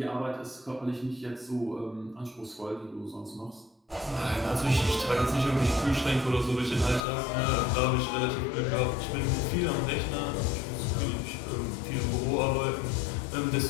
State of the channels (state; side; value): drops out; right; at 7.0 s